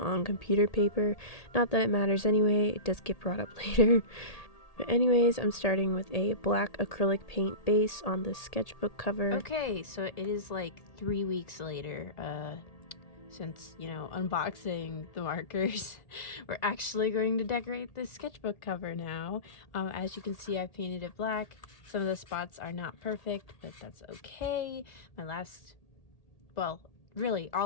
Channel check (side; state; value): right; late; 1.8 ms